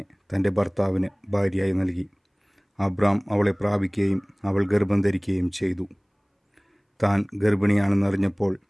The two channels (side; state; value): both; identical; correlation 1.00